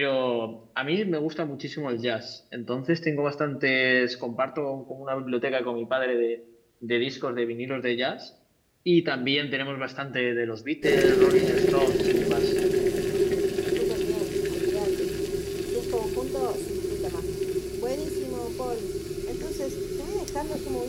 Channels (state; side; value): identical; both; correlation 1.00